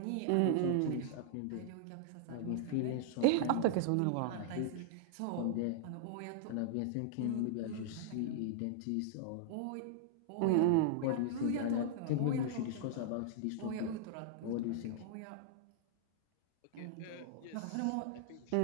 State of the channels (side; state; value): both; different; correlation -0.01